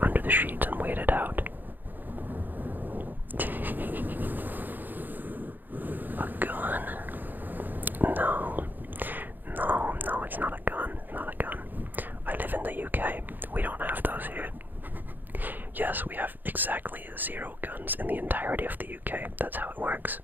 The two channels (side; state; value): left; late; 0.087 ms